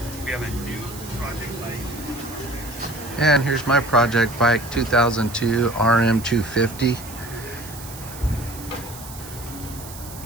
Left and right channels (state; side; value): noise; right; hiss, 15 dB below the sound